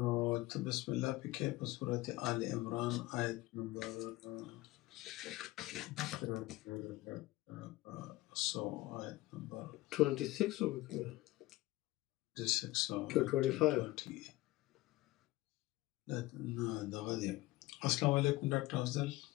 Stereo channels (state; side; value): quieter; right; 18.4 dB